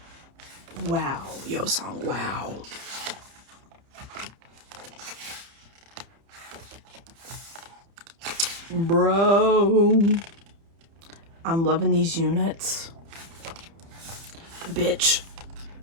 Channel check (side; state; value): left; late; 30 ms